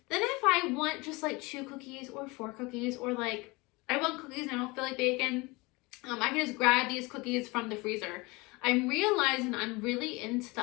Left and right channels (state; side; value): quieter; right; 24.4 dB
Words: then if I want just like 2 cookies or 4 cookies or like I want cookies and I don't feel like baking, I can just grab these cookies from the freezer. I'm realizing I'm really into